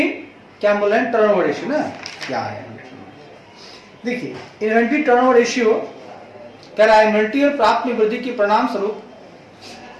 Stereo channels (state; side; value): identical; both; correlation 1.00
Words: क्या बोल रहे हैं, टर्नओवर रेशियो ना क्या है। देखिए इन्वेंट्री टर्नओवर रेशियो कह रहा है इन्वेंट्री और प्राप्त में वृद्धि के परिणाम स्वरूप